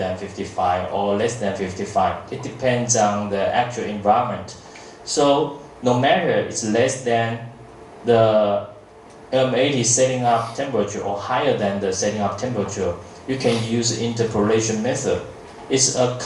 55 or less than 55. It depends on the actual environment. So no matter it's less than the M80 setting up temperature or higher than the setting up temperature, you can use interpolation method. It's a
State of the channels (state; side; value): identical; both; correlation 1.00